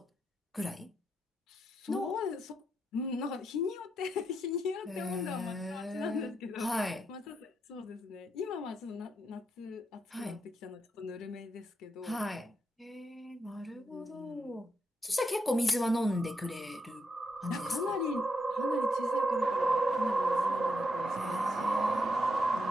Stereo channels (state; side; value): normal; both; correlation 0.81